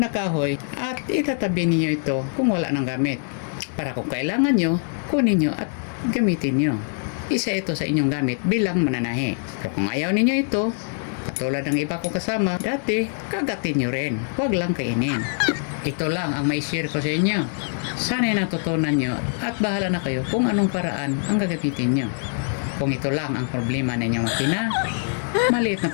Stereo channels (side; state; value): right; silent; 63 dB below the other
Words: kahoy at itatabi ninyo ito kung wala nang gamit. Para kung kailangan nyo, kunin nyo at gamitin nyo. Isa ito sa inyong gamit bilang mananahi. Pero kung ayaw ninyo ito, katulad ng iba ko kasama, dati, kagatin nyo rin. Huwag lang kainin. Ito lang ang may share ko sa inyo. Sana'y natutunan nyo at bahala na kayo kung anong paraan ang gagamitin nyo. Kung ito lang ang problema na inyong makina, maliit na